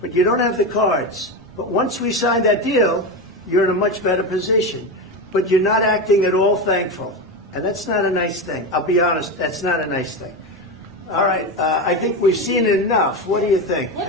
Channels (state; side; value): normal; both; correlation 0.18